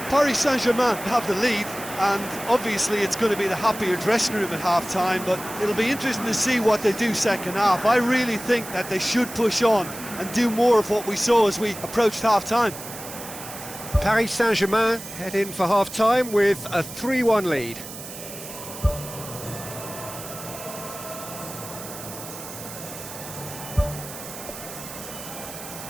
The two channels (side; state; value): right; noise; hiss, 12 dB below the sound